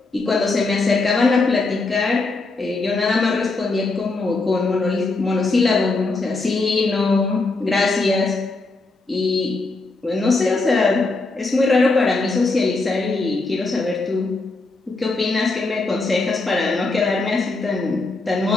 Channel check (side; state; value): right; quieter; 3.5 dB